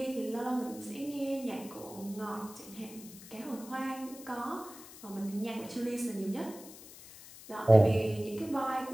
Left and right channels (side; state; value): left; noise; hiss, 17 dB below the sound